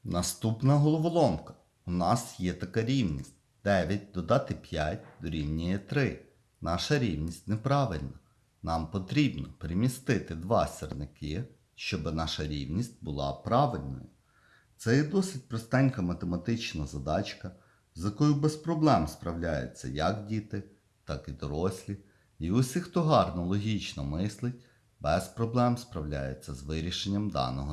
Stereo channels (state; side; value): identical; both; correlation 1.00